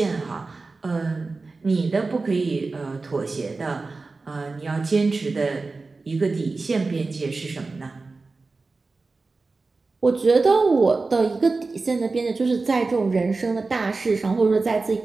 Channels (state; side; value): quieter; left; 3.8 dB